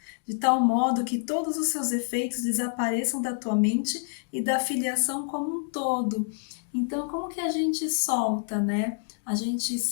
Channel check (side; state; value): right; silent; digital silence